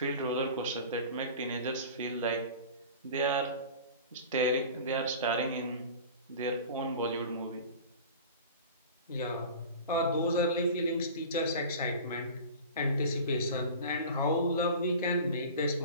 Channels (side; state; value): both; inverted; correlation -0.37